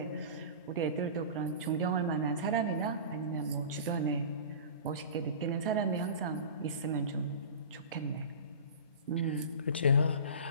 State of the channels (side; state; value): both; inverted; correlation -0.35